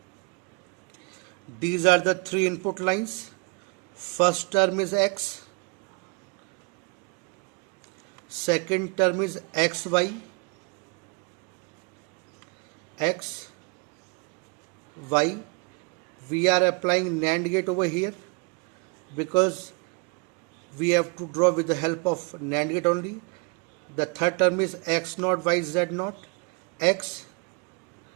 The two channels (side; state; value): left; quieter; 32.8 dB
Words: These are the three input lines. First term is X, second term is XY, X, Y. We are applying NAND gate over here because we have to draw with the help of NAND gate only. The third term is X naught, Y, Z naught, X